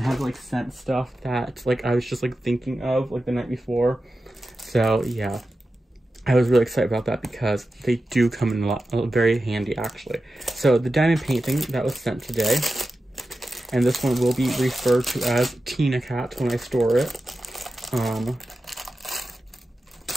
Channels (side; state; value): both; normal; correlation 0.92